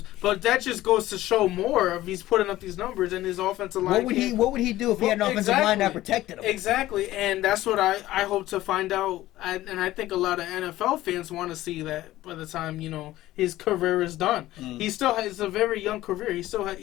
But that just goes to show more of he's putting up these numbers, and his offensive line. What would he do if he had an offensive line that protected him? Exactly, and that's what I hope to find out. And I think a lot of NFL fans want to see that by the time his career is done. He still has a very young career. He's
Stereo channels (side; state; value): right; quieter; 15.6 dB